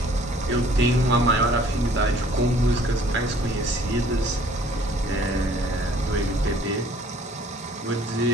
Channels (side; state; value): both; normal; correlation 0.56